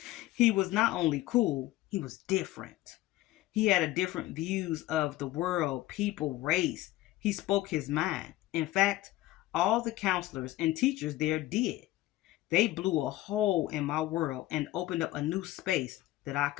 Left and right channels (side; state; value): right; quieter; 16.2 dB